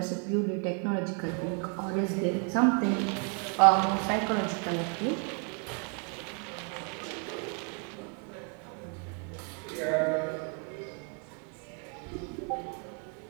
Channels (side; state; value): left; quieter; 38.4 dB